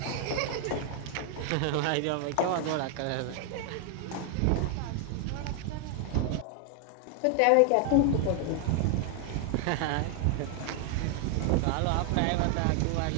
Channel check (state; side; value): different; both; correlation 0.00